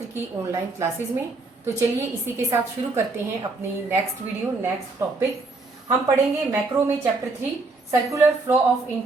की ऑनलाइन क्लासेस में। तो चलिए इसी के साथ शुरू करते हैं अपनी नेक्स्ट वीडियो, नेक्स्ट टॉपिक। हम पढ़ेंगे मैक्रो में chapter 3 circular flow of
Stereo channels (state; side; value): quieter; left; 3.5 dB